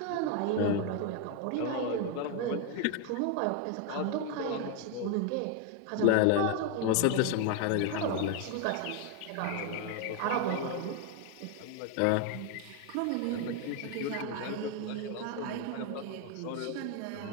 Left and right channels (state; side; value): different; both; correlation 0.01